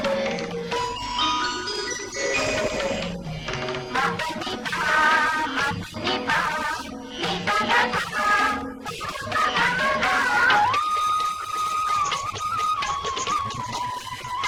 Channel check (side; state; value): both; identical; correlation 1.00